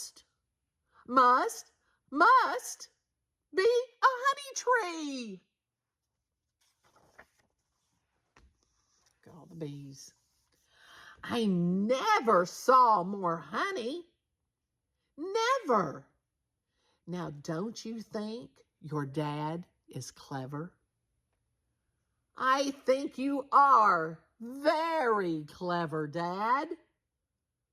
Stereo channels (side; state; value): both; identical; correlation 1.00